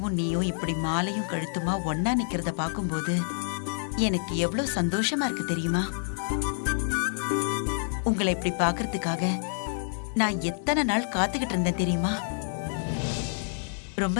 நீயும் இப்படி மாலையும் கழுத்துமா ஒன்னா நிக்கிறத பாக்கும்போது எனக்கு எவ்வளவு சந்தோஷமா இருக்கு தெரியுமா? உங்களை இப்படி பாக்குறதுக்காக நான் எத்தனை நாள் காத்துக்கிட்டு இருந்தேன் தெரியுமா?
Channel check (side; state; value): right; silent; 59 dB below the other